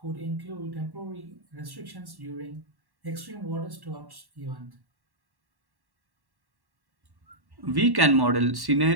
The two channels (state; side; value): late; left; 1.1 ms